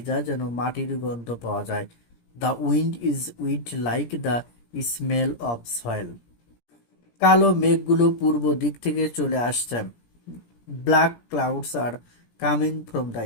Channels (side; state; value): right; late; 17 ms